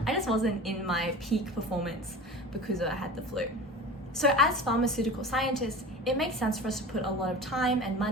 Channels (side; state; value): both; normal; correlation 0.35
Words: I just wasn't in my peak performance because I had the flu. So as pharmaceutical scientists, it makes sense for us to put a lot of time and